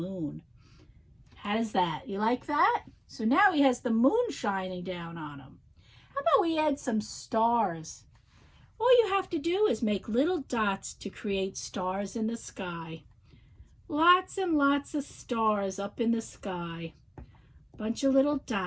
How does that? You like that? So now he has the moon shining down on him. How about we add some stars? All you have to do is make little dots to create stars in the sky. Lots and lots of stars up in the sky. Bunch of little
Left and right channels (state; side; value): identical; both; correlation 1.00